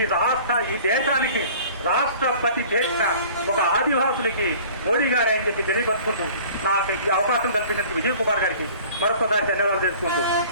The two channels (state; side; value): inverted; both; correlation -0.47